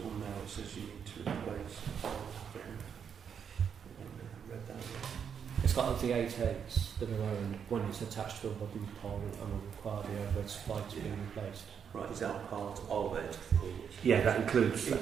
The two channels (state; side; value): quieter; left; 7.4 dB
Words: now that says you need to replace. Read that. It's got the 8 heads that are owned. One is attached to a wooden pole and will require the overhead supply to be replaced. Right, is that part of it? Yeah, that includes... It